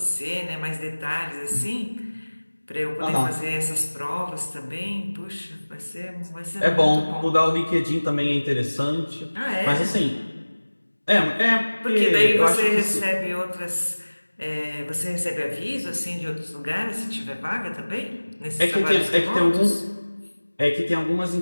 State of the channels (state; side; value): inverted; both; correlation -1.00